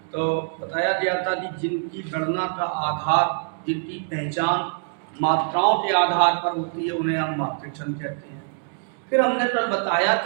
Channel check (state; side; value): silent; left; digital silence